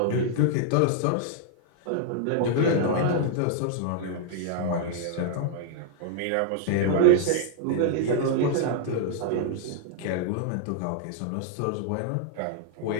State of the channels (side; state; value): both; different; correlation -0.01